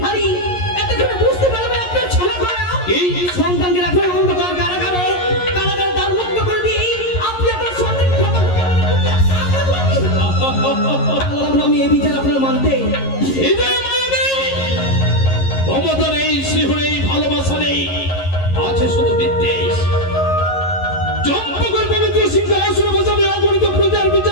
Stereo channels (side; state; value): right; late; 11 ms